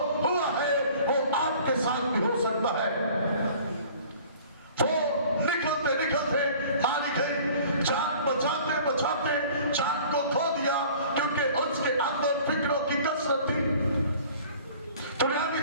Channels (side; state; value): both; inverted; correlation -0.48